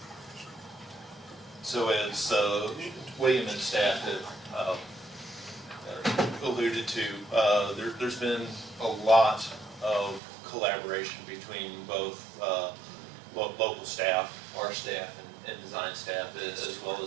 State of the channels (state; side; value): drops out; left; at 10.2 s